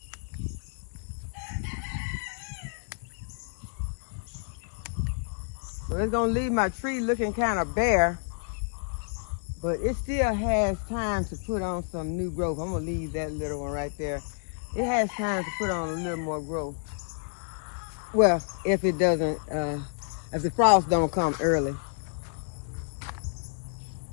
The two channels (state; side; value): silent; right; 58 dB below the other